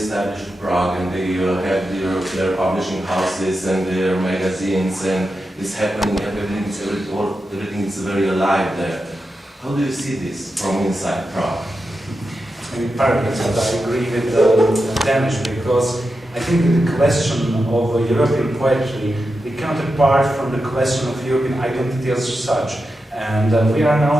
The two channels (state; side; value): normal; both; correlation 0.89